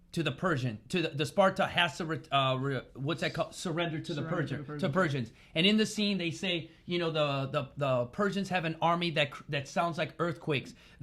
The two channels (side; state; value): both; identical; correlation 1.00